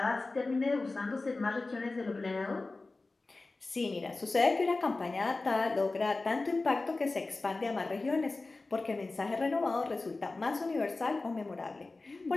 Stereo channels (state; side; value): quieter; right; 3.4 dB